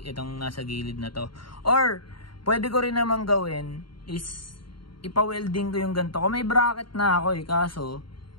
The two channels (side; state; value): right; late; 0.73 ms